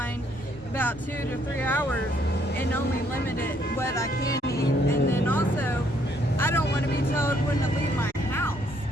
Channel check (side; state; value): both; normal; correlation 0.68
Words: about 2 to 3 hours and only limit it what I can eat. And then also, I don't want to be told when to leave my house.